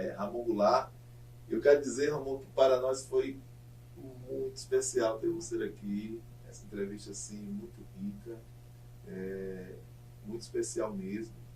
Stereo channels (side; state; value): both; identical; correlation 1.00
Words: Ramon Goulart. Eu quero dizer, Ramon, que para nós foi muito especial ter você aqui. Essa entrevista assim, muito rica, muito especial mesmo,